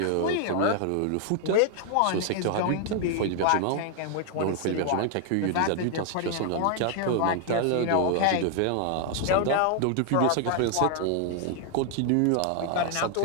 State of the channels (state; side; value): different; both; correlation 0.00